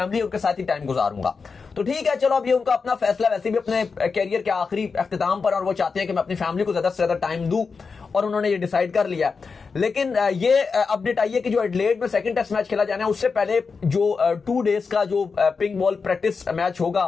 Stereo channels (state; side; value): quieter; right; 5.0 dB